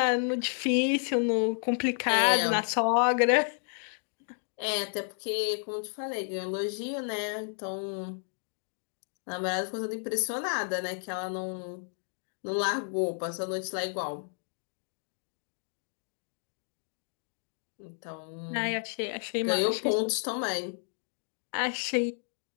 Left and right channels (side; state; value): right; silent; 57 dB below the other